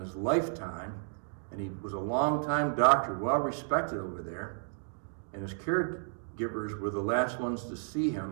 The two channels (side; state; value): left; silent; digital silence